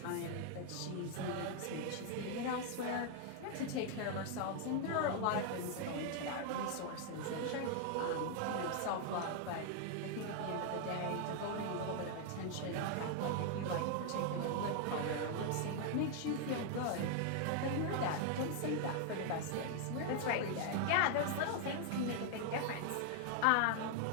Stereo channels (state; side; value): different; both; correlation 0.00